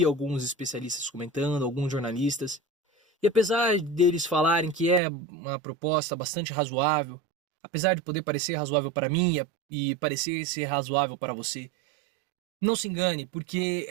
alguns especialistas comentando, alguns jornalistas, e apesar deles falarem que é uma proposta bastante razoável, apesar de poder parecer razoável para mim e parecer ser razoável para você, não se engane, porque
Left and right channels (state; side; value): drops out; left; at 5.0 s